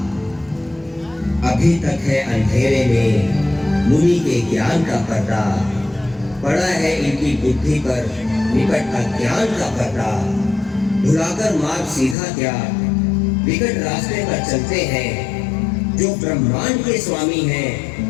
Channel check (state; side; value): drops out; right; at 12.2 s